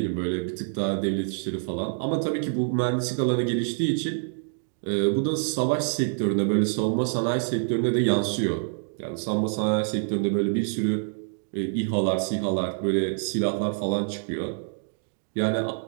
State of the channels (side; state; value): left; silent; digital silence